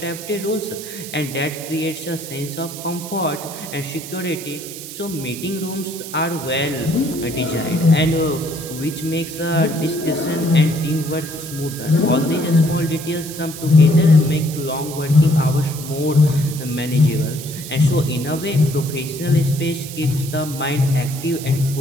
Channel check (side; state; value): right; noise; hiss, 11 dB below the sound